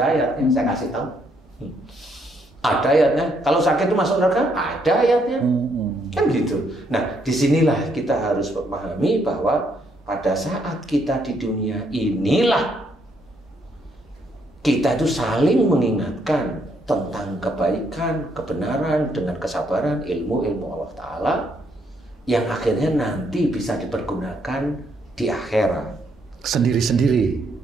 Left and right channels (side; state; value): both; normal; correlation 0.73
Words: ayatnya, saya kasih tahu. Ada ayatnya. Kalau sakit itu masuk neraka, ada ayatnya. Kan gitu. Nah, disinilah kita harus memahami bahwa pada saat kita di dunia inilah kita itu saling mengingatkan tentang kebaikan, kebenaran dengan kesabaran, ilmu Allah Ta'ala yang akhirnya nanti bisa dipergunakan di akhirat. Sendiri-sendiri.